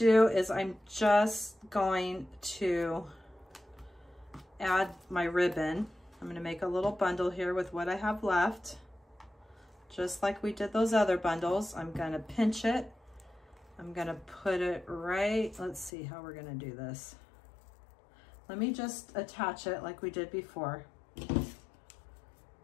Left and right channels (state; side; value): drops out; right; at 15.9 s